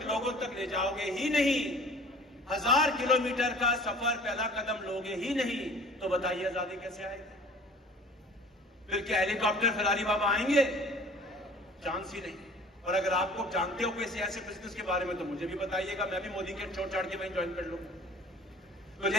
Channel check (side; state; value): both; normal; correlation 0.47